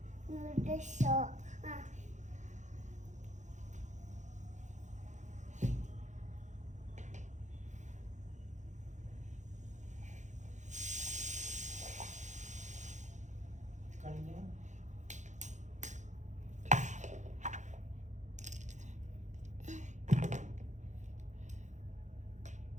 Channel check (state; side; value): late; left; 0.35 ms